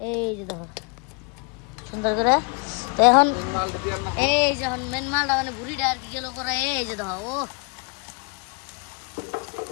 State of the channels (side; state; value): right; quieter; 35.3 dB